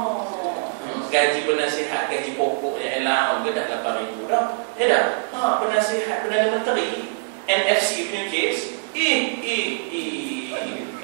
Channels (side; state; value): left; silent; 63 dB below the other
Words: Gaji penasihat, gaji pokok yang elang ke dah 8,000 dah. Penasihat Perdana Menteri NFC punya kes.